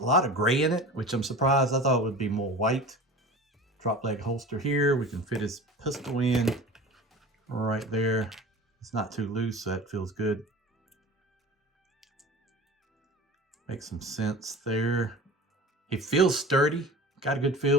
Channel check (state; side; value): normal; both; correlation 0.36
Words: lot of gray in it, which I'm surprised. I thought it would be more white. Drop leg holster here. We can fit his pistol in right there. It's not too loose, so that feels good. Makes some sense there. He feels sturdy. Got a good